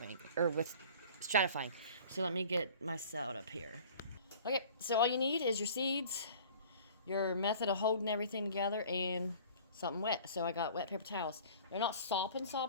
or with stratifying. So let me get my salad up here. Okay, so all you need is your seeds, your method of holding everything together, and something wet. So I got wet paper towels. They're not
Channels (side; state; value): both; inverted; correlation -0.46